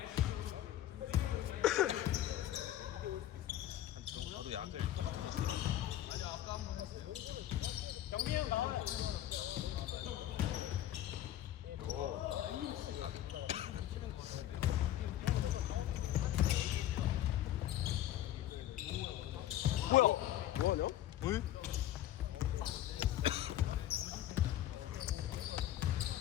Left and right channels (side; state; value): right; quieter; 12.7 dB